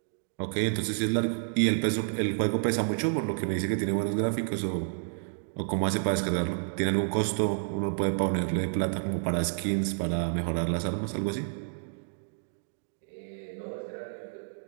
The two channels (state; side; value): silent; left; digital silence